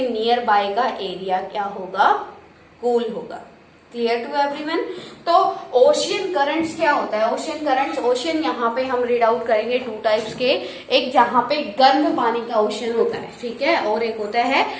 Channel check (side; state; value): both; identical; correlation 1.00